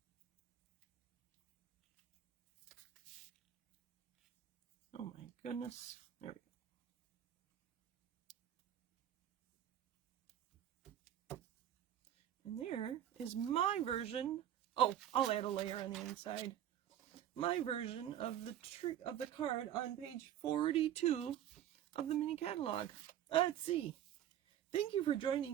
Oh my goodness. There we go. And there is my version. Oh, I'll add a layer on the inside. My version of the card on page 42 of the mini catalog. Let's see. Thank you for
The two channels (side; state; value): left; quieter; 11.0 dB